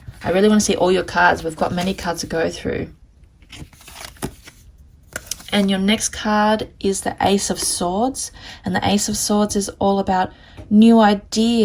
I really want to see all your cards. We've got many cards to go through. And your next card is the Ace of Swords. And the Ace of Swords is all about new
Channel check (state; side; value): identical; both; correlation 1.00